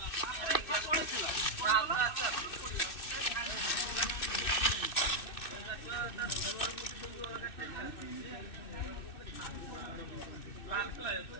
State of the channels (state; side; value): late; right; 2.6 ms